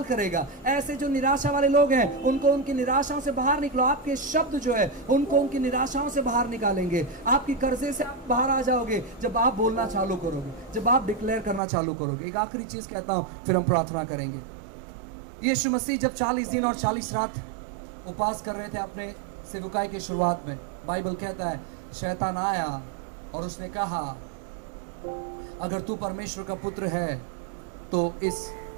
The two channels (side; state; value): left; drops out; at 11.6 s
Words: करेगा। ऐसे जो निराशा वाले लोग हैं, उनको उनकी निराशाओं से बाहर निकलो। आपके शब्द जो है उनको उनकी निराशाओं से बाहर निकालेंगे। आपकी कर्जे से आप बाहर आ जाओगे जब आप बोलना चालू करोगे, जब आप डिक्लेयर करना चालू करोगे। एक आखिरी चीज कहता हूं, फिर हम प्रार्थना करेंगे। यीशु मसीह जब 40 दिन और 40 रात उपवास कर रहे थे अपने सेवकाई की शुरुआत में, बाइबल कहता है शैतान आया और उसने कहा, अगर तू परमेश्वर का पुत्र है तो